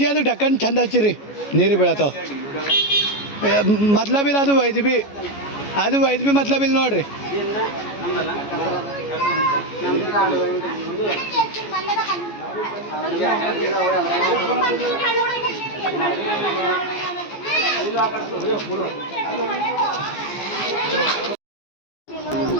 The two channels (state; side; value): late; right; 14 ms